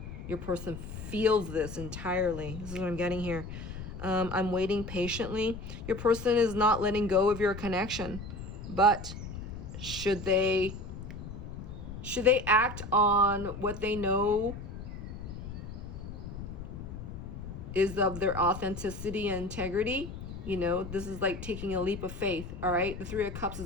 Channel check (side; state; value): left; noise; rumble, 9 dB below the sound